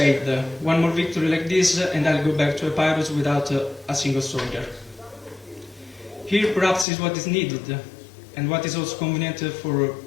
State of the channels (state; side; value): drops out; right; at 6.9 s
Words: one more victory like this and I'll go back to Epirus without a single soldier. Here perhaps is what is needed and what is also convenient for